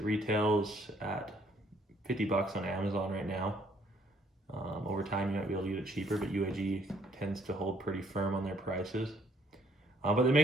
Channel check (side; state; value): both; normal; correlation 0.65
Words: retails at $50 on Amazon right now. Over time, you might be able to get it cheaper, but UAG tends to hold pretty firm on their prices. But they